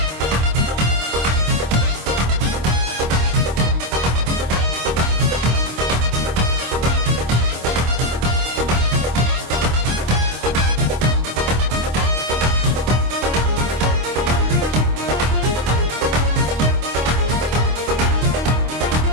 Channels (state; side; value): late; left; 26 ms